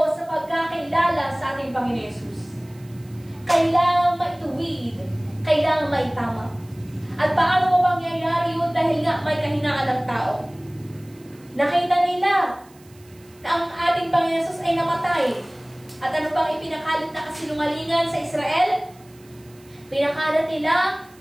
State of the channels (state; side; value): noise; right; hiss, 28 dB below the sound